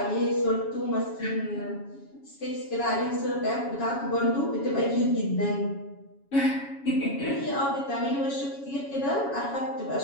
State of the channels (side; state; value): right; late; 7.2 ms